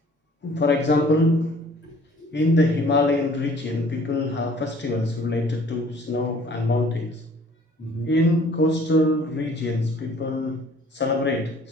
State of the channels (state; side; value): normal; both; correlation 0.54